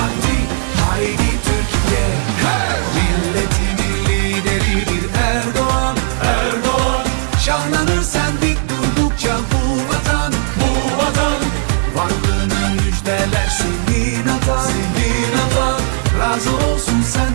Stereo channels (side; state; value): left; silent; 69 dB below the other